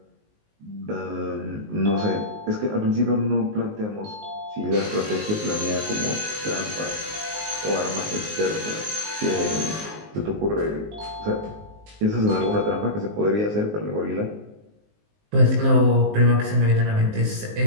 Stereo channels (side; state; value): left; late; 19 ms